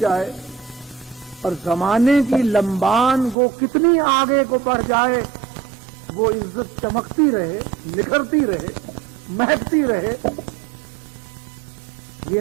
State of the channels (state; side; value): drops out; left; at 3.4 s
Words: اور زمانے کی لمبان وہ کتنی آگے کو بڑھ جائے، وہ عزت چمکتی رہے، نکھرتی رہے، مہکتی رہے. یہ